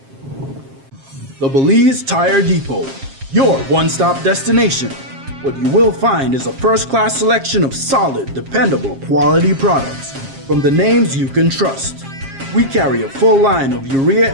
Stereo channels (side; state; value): left; late; 7.4 ms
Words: The Belize Tire Depot, your one-stop destination. What you will find is a first-class selection of solid, dependable, quality products. from the names you can trust. We carry a full line of urea